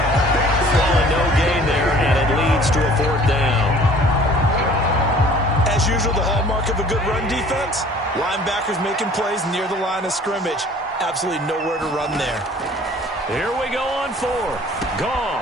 Well, no gain there, and it leads to a 4th down. As usual, the hallmark of a good run defense, linebackers making plays near the line of scrimmage. Absolutely nowhere to run there. Here we go on 4th.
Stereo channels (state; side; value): normal; both; correlation 0.51